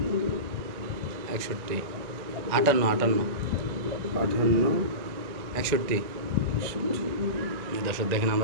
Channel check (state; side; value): late; left; 1.9 ms